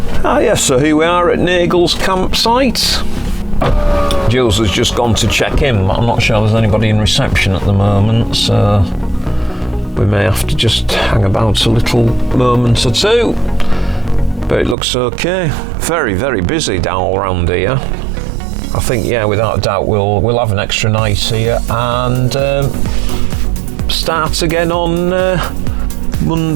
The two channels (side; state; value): left; drops out; at 14.8 s